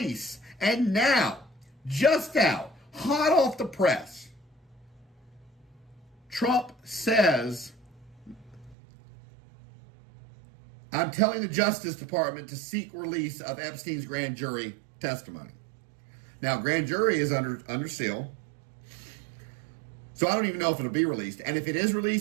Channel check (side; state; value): left; drops out; at 8.8 s